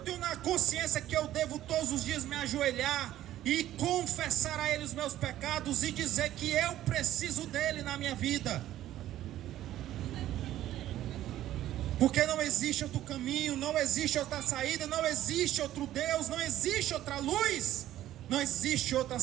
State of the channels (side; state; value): left; quieter; 13.2 dB